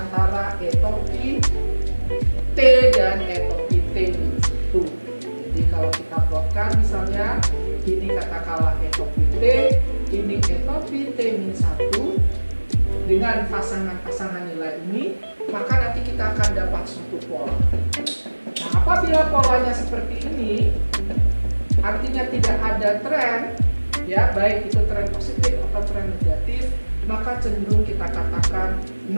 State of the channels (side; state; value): both; inverted; correlation -1.00